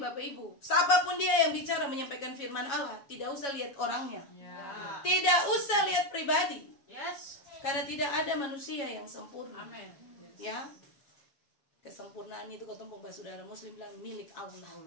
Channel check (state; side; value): late; right; 7.2 ms